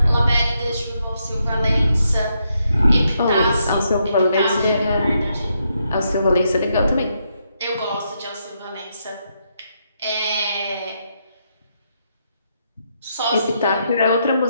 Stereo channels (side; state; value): both; inverted; correlation -0.79